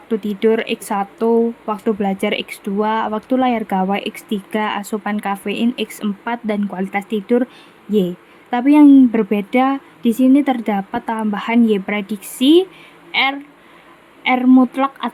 tidur X1, waktu belajar X2, waktu layar gawai X3, asupan kafein X4, dan kualitas tidur Y. Tapi yang berbeda di sini terdapat tambahan Y prediksi, R mutlak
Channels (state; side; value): identical; both; correlation 1.00